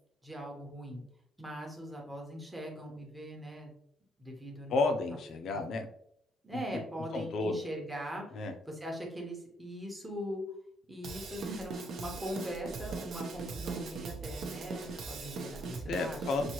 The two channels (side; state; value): both; normal; correlation 0.71